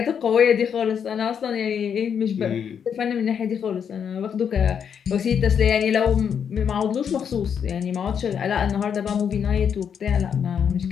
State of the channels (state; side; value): quieter; right; 7.7 dB